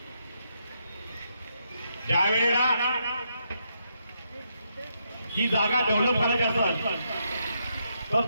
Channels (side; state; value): both; inverted; correlation -0.79